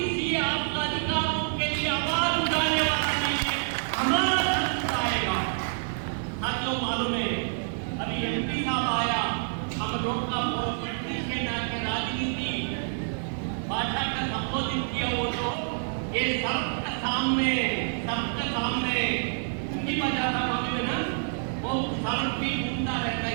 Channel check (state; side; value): silent; left; digital silence